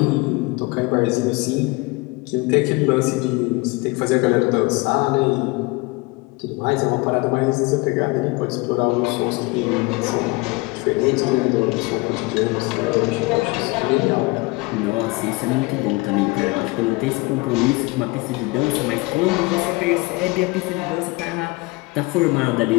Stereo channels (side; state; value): right; quieter; 24.7 dB